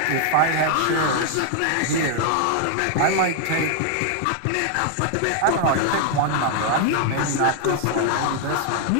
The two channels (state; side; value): different; both; correlation 0.00